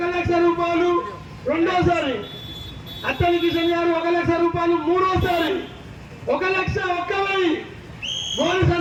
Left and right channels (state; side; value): identical; both; correlation 1.00